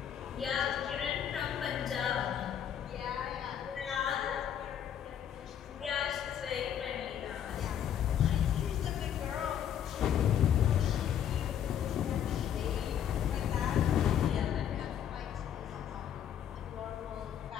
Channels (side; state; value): right; quieter; 9.4 dB